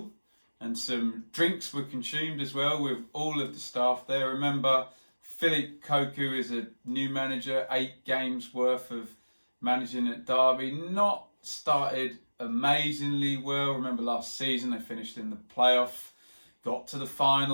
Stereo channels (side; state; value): both; inverted; correlation -1.00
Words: and some drinks were consumed as well with all of the staff there. Remember, Keogh is a new manager, 8 games worth of managing at Derby. Not started amazingly well. Remember last season they finished in the playoff, got to the